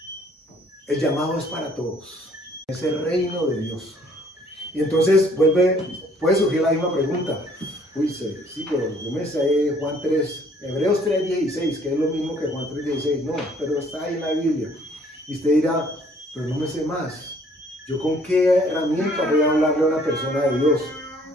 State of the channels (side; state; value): both; normal; correlation 0.60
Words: El llamado es para todos, es el reino de Dios. Y entonces puede surgir la misma pregunta: uy, sí, pero yo me sé Juan 3, Hebreos 3:16, que es lo mismo que Juan 3:16. No, pero está ahí en la Biblia. Y usted dirá: pero no me sé más. ¿Yo con qué herramienta voy a hablarle a una persona de Dios?